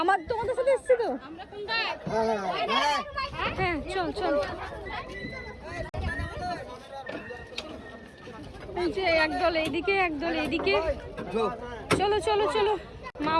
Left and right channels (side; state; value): both; identical; correlation 1.00